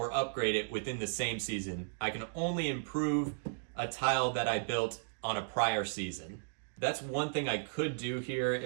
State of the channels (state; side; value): silent; left; digital silence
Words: upgrade it within the same season. I can only improve a tile that I built on a prior season. That's one thing I could do here